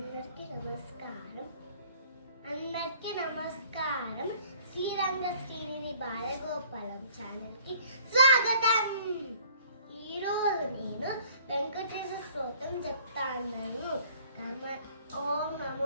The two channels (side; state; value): both; inverted; correlation -0.55